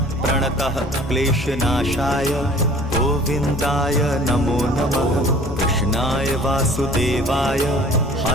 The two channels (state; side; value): normal; both; correlation 0.49